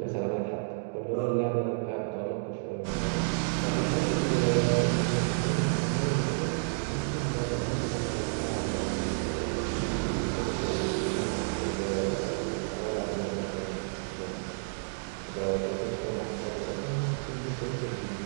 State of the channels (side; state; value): left; silent; digital silence